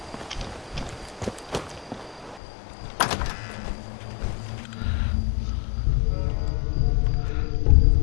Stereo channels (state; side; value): drops out; right; at 2.4 s